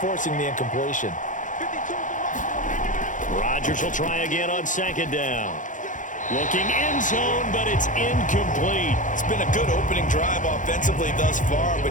the incompletion. Rodgers will try again on second down. Looking end zone, but it's incomplete. It's been a good opening drive offensively thus far,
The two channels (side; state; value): right; late; 0.37 ms